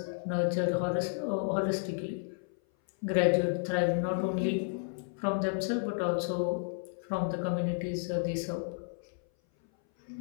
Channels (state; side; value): silent; right; 56 dB below the other